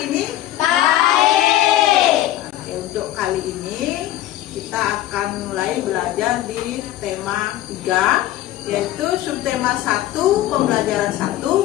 ini? Baik. Oke, untuk kali ini kita akan mulai belajar di tema 3, yaitu subtema 1, pembelajaran 1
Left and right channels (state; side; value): quieter; right; 13.9 dB